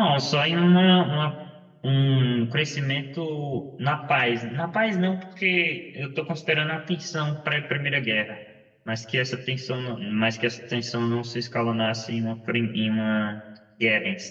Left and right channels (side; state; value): both; identical; correlation 1.00